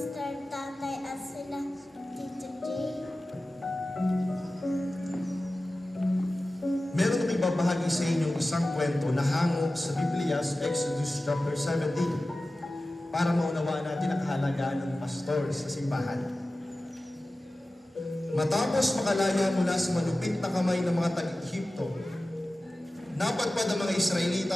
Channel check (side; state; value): both; normal; correlation 0.96